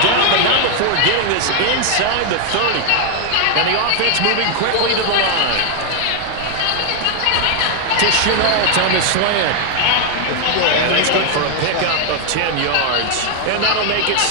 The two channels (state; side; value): different; both; correlation 0.00